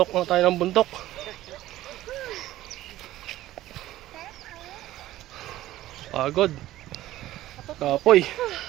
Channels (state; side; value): quieter; left; 15.1 dB